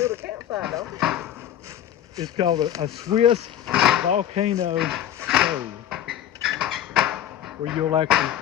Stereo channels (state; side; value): quieter; right; 10.9 dB